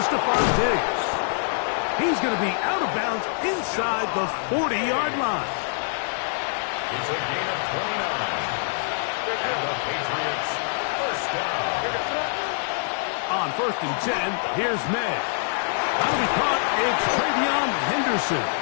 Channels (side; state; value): right; silent; digital silence